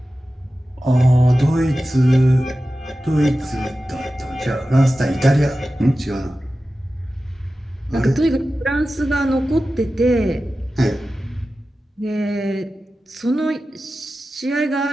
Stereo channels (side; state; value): both; normal; correlation 0.94